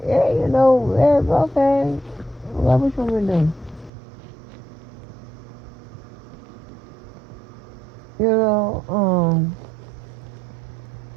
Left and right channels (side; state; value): left; drops out; at 3.9 s